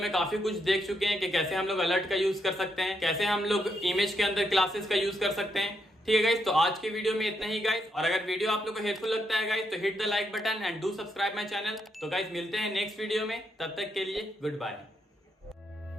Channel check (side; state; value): both; normal; correlation 0.79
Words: काफी कुछ देख चुके हैं कि कैसे हम लोग अलर्ट का यूज कर सकते हैं, कैसे हम लोग इमेज के अंदर क्लासेस का यूज कर सकते हैं, ठीक है गाइस। तो आज की वीडियो में इतना ही गाइस, और अगर वीडियो आप लोग को हेल्पफुल लगता है गाइस तो hit the like button and do subscribe my channel. तो गाइस मिलते हैं नेक्स्ट वीडियो में, तब तक के लिए गुड बाय।